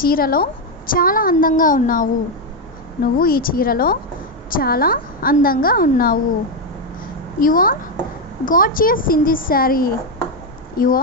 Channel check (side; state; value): both; normal; correlation 0.04